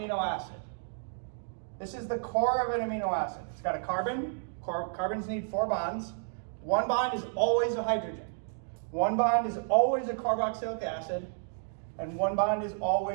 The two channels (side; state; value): left; silent; digital silence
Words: acid. This is the core of an amino acid. It's got a carbon. Carbons need 4 bonds. One bond is always a hydrogen. One bond is always a carboxylic acid, and one bond is